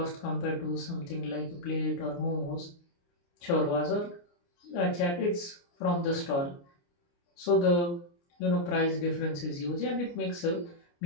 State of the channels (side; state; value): right; late; 29 ms